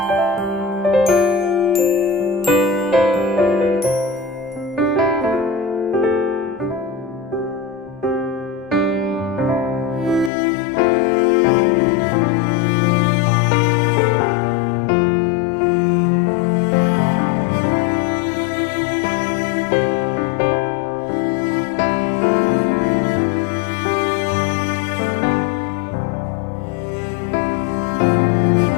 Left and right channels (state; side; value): drops out; right; at 10.3 s